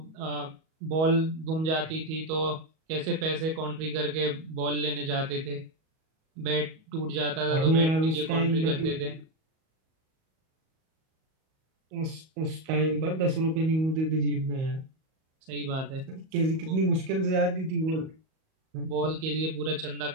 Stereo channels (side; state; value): left; late; 38 ms